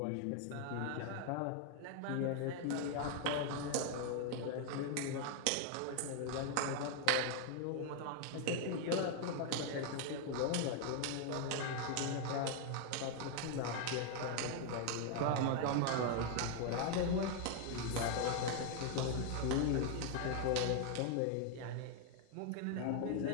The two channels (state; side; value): different; both; correlation 0.00